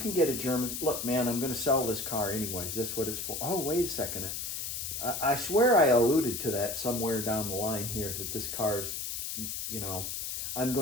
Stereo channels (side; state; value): left; noise; hiss, 4 dB below the sound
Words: get a German... Look, man, I'm going to sell this car anyways. That's what it's for. Oh, wait a second. I swear I alluded to that somewhere down the line here, that this car's, you know, I'm